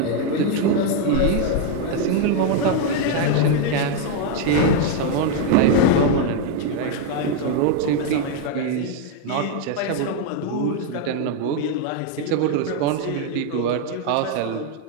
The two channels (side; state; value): both; different; correlation 0.01